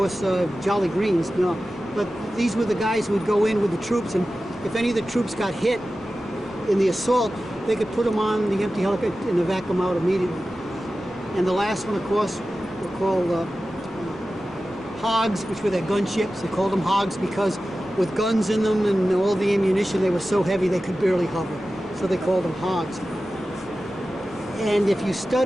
Jolly Greens, no. But these were the guys who would go in with the troops, and if any of the troops got hit in the assault, they could put them on the empty helicopter and evac them out immediately. And the last one, of course, were called hogs, which were their gunships. They called them hogs because with guns in them and all the ammunition, they were so heavy they could barely hover. So they called them hogs. And if you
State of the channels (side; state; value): both; normal; correlation 0.94